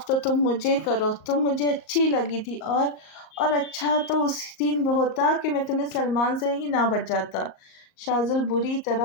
تو تم مجھے کرو، تم مجھے اچھی لگی تھی، اور اچھا تو اس دن ہوتا کہ میں تمہیں سلمان سے ہی نہ بچاتا۔ شازل بری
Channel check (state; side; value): late; right; 38 ms